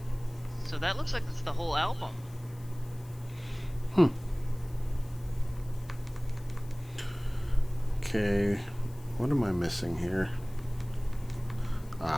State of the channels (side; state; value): left; noise; hiss, 25 dB below the sound